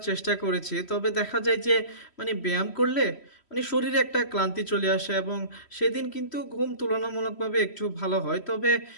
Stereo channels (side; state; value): right; late; 3.1 ms